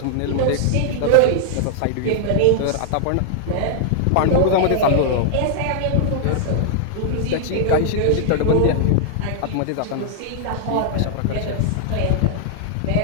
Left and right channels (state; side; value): different; both; correlation -0.01